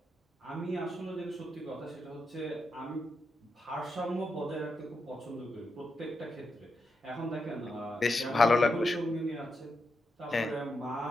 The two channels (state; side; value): normal; both; correlation 0.85